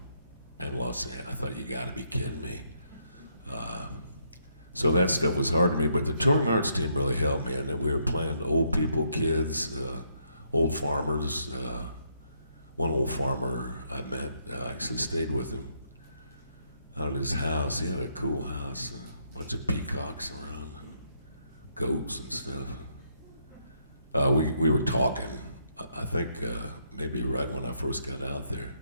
and Los Angeles. I thought, you got to be kidding me. So that stuff was hard to me, but the touring arts team really helped me, and we were playing old people, kids, old farmers. One old farmer I met, I actually stayed with him out at his house. He had a cool house, a bunch of peacocks around, and goats and stuff. We were talking, I think maybe right when I first got out there,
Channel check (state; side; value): inverted; both; correlation -0.74